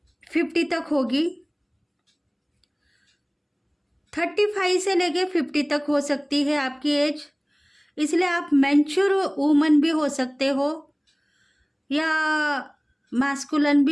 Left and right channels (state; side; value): identical; both; correlation 1.00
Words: 50 तक होगी, 35 से लेके 50 तक हो सकती है आपकी एज। इसलिए आप मैच्योर वूमन भी हो सकते हो या मैस्कुलिन